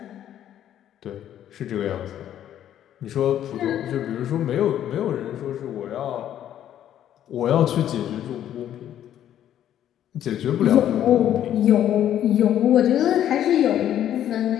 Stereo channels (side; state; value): right; quieter; 11.0 dB